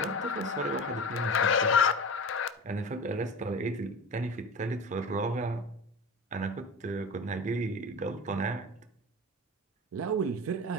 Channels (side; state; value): both; normal; correlation 0.31